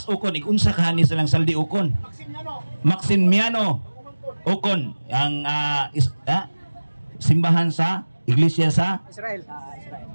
Ukon. Ikunsa ka ni silang saldi Ukon. Maximiano Ukon ang simbahan sa iglesia sa Israel.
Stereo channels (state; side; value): inverted; both; correlation -1.00